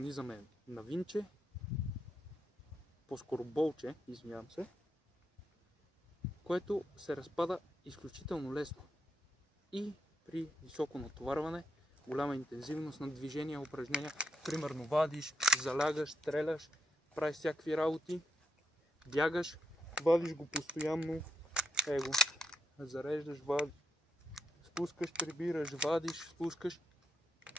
е на винче, по-скоро болче, извинявам се, което се разпада изключително лесно. И при високо натоварване, голяма интензивност на движения, упражнения, примерно вадиш, залягаш, стреляш, правиш всякакви работи, бягаш, вадиш го постоянно, зареждаш, вадиш, спускаш, прибираш, вадиш, спускаш,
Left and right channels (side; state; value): both; normal; correlation 0.82